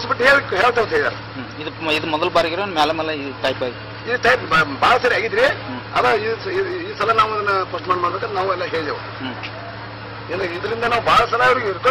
ಬಿಟ್ಟು ಹೇಳ್ತೇವೆ ಹೇಳಿದಾರೆ. ಇದು ಮೊದಲ ಬಾರಿಗೆ ಮೇಲೆ ಈ ಟೈಪ್ ಈ ಟೈಪ್ ಬಹಳ ಸರಿ ಆಗಿದ್ರಿ. ಅದ ಈ ಸಲ ನಾವು ಅದನ್ನ ಪೋಸ್ಟ್ಮಾನ್ ಮಾಡ್ಬೇಕಂತ ನಾವು ಎಲ್ಲ ಹೇಳಿದೆವು. ಇದರಿಂದ ನಾವು ಬಹಳ ಸಲ ಅವ್ರಿಗೆ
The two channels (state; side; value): identical; both; correlation 1.00